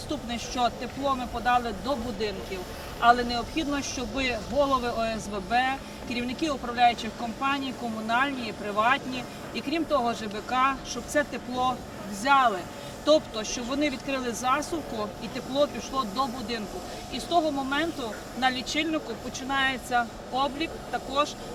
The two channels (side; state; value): both; identical; correlation 1.00